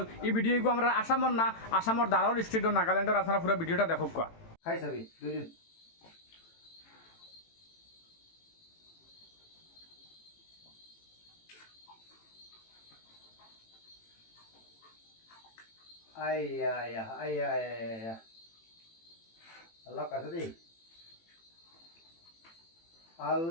এই ভিডিওগু আমরা আসামর না আসামর দারোল স্টেট নাগাল্যান্ডের আপনারা পুরো ভিডিওটা দেখো কা খাই চাবি দুজন আয়া আল্লাহ কাছে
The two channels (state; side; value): late; right; 18 ms